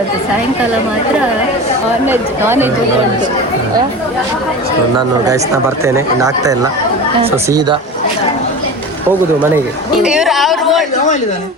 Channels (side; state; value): both; normal; correlation 0.31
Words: ಸಾಯಂಕಾಲ ಮಾತ್ರ ನಾನ್ ವೆಜ್ ಉಂಟು. ನಾನು ಗೈಸ್ನ ಬರ್ತೇನೆ, ಇನ್ನು ಆಗ್ತಾ ಇಲ್ಲ. ಸೊ ಸೀದಾ ಹೋಗುದು ಮನೆಗೆ.